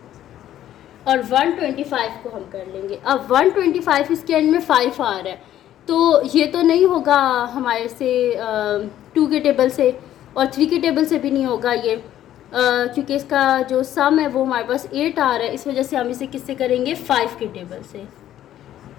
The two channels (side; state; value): right; quieter; 12.1 dB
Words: और 125 को हम कर लेंगे। अब 125 इसके एंड में 5 आ रहा है तो ये तो नहीं होगा हमारे से 2 के टेबल से और 3 के टेबल से भी नहीं होगा ये क्योंकि इसका जो सम है वो हमारे पास 8 आ रहा है। इस वजह से हम इसे किससे करेंगे 5 के टेबल से।